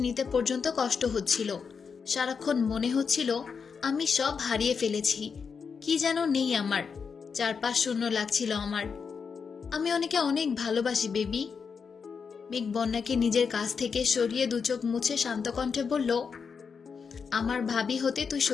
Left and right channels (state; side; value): quieter; right; 5.9 dB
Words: নিতে পর্যন্ত কষ্ট হচ্ছিল। সারাক্ষণ মনে হচ্ছিল আমি সব হারিয়ে ফেলেছি, কি যেন নেই আমার, চারপাশ শূন্য লাগছিল আমার। আমি ওনাকে অনেক ভালোবাসি বেবি। মেঘ বন্যাকে নিজের কাছ থেকে সরিয়ে দু চোখ মুছে শান্ত কণ্ঠে বলল, আমার ভাবি হতে তুই